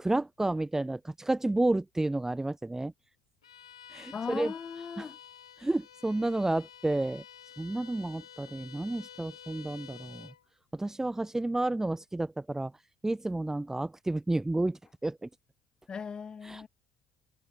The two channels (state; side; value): normal; both; correlation 0.98